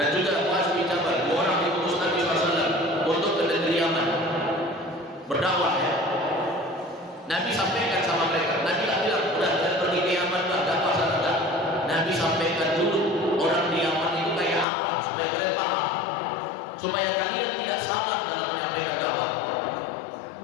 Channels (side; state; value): right; drops out; at 14.7 s